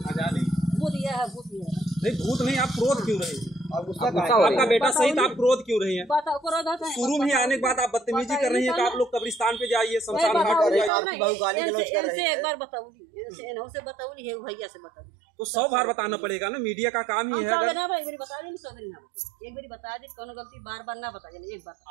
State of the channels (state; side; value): drops out; left; at 10.9 s